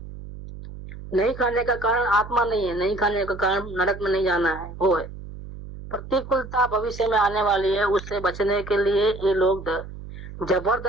नहीं खाने का कारण आत्मा नहीं है, नहीं खाने का कारण नरक में नहीं जाना है, वो है प्रतिकूलता भविष्य में आने वाली है। उससे बचने के लिए ये लोग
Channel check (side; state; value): right; noise; hum, 13 dB below the sound